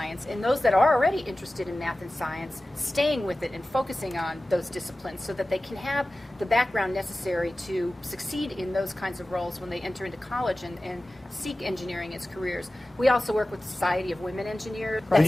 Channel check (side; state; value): both; normal; correlation 0.96